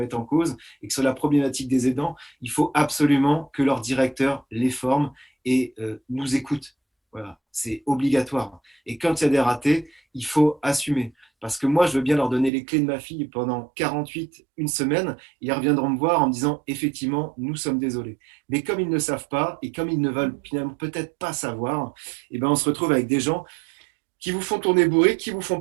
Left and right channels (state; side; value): drops out; left; at 12.5 s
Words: en cause et que sur la problématique des aidants, il faut absolument que leur directeur les forme et nous écoute. Voilà, c'est obligatoire. Et quand il y a des ratés, il faut assumer. Parce que moi, je veux bien leur donner les clés de ma fille pendant 48, une semaine. Et ils reviendront me voir en me disant, effectivement, nous sommes désolés. Mais comme ils ne savent pas et comme ils ne veulent finalement peut-être pas savoir, on se retrouve avec des gens qui vous font tourner bourré, qui vous font